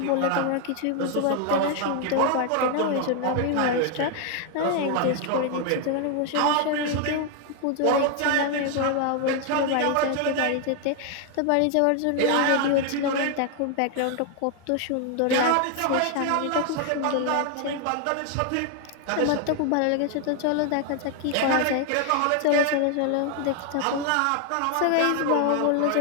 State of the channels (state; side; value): different; both; correlation 0.00